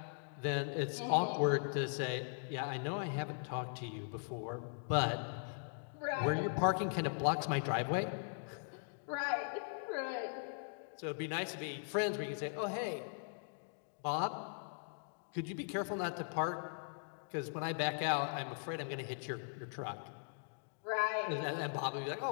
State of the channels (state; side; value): silent; right; digital silence